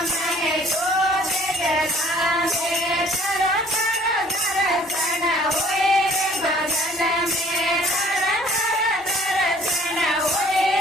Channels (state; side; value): normal; both; correlation 0.55